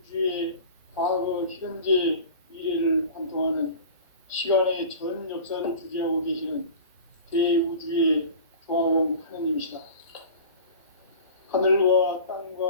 과거, 현재, 미래를 관통하는 시간의 전 역사를 주재하고 계시는 대우주의 조화원 하느님이시다. 하늘과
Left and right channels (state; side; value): inverted; both; correlation -0.38